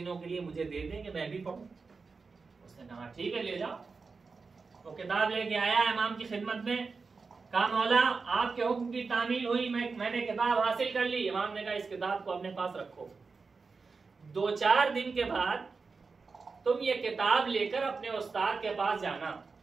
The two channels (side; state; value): left; quieter; 4.5 dB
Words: کے لیے مجھے دے دیں کہ میں بھی پڑھوں؟ اس نے کہا ٹھیک ہے لے جاؤ. وہ کتاب لے کے آیا امام کی خدمت میں، کہا مولا آپ کے حکم کی تعمیل ہوئی، میں نے کتاب حاصل کر لی. امام نے کہا اس کتاب کو اپنے پاس رکھو، 2-4 دن کے بعد تم یہ کتاب لے کر اپنے استاد کے پاس جانا